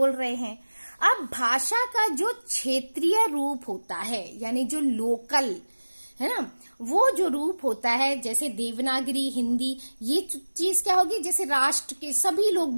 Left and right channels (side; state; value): both; inverted; correlation -1.00